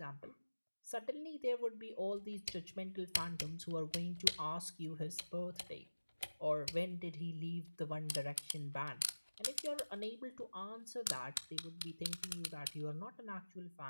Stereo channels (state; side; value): inverted; both; correlation -1.00